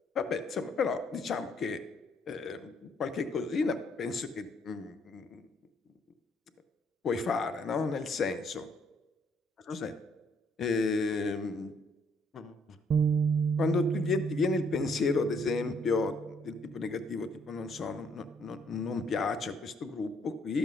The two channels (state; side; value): normal; both; correlation 0.68